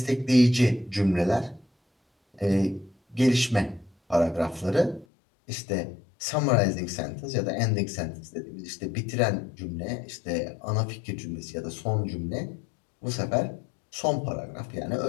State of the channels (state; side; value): drops out; right; at 5.1 s